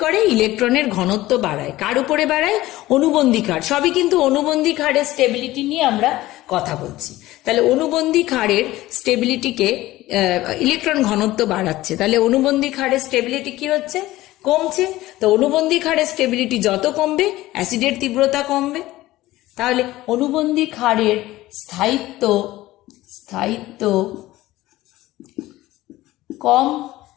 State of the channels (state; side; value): quieter; right; 16.9 dB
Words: ইলেকট্রনের ঘনত্ব বাড়ায়। কার উপরে বাড়ায়? অনুবন্ধী ক্ষার। সবই কিন্তু অনুবন্ধী ক্ষারের স্টেবিলিটি নিয়ে আমরা কথা বলছি। তাহলে অনুবন্ধী ক্ষারের স্টেবিলিটিকে ইলেকট্রন ঘনত্ব বাড়াচ্ছে, তাহলে অনুবন্ধী ক্ষারের স্টেবিলিটি কি হচ্ছে? কমছে। তো অনুবন্ধী ক্ষারের স্টেবিলিটি যত কমবে অ্যাসিডের তীব্রতা কমবে। তাহলে অনুবন্ধী ক্ষারের স্থায়িত্ব কম